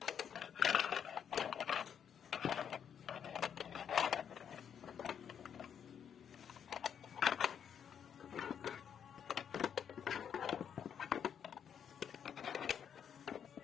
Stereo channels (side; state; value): right; quieter; 8.2 dB